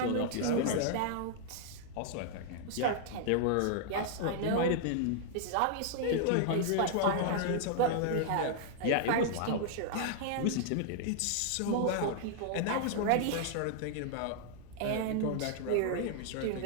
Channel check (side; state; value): both; different; correlation -0.01